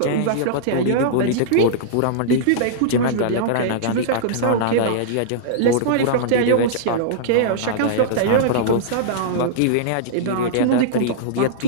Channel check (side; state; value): both; different; correlation -0.03